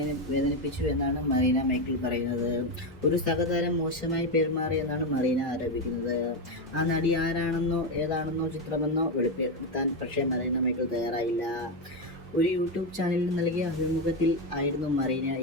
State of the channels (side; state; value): both; normal; correlation 0.10